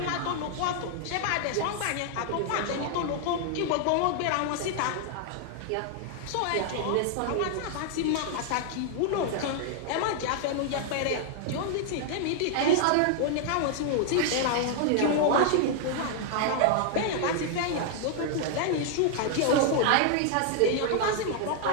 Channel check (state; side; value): different; both; correlation 0.00